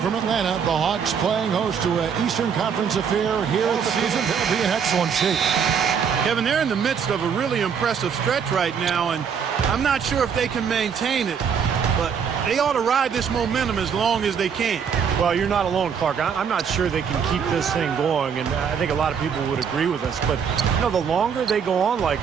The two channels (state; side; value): quieter; left; 7.0 dB